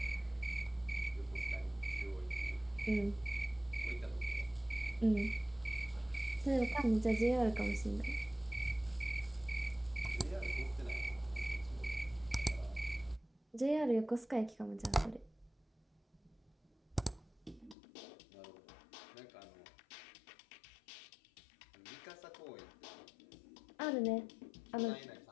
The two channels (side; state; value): right; drops out; at 17.8 s